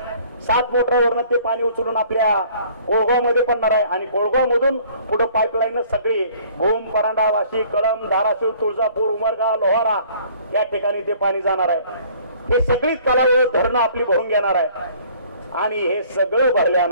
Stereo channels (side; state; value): both; inverted; correlation -0.55